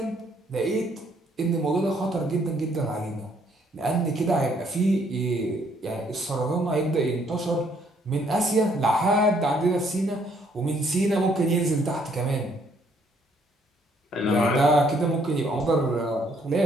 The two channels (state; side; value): normal; both; correlation 0.67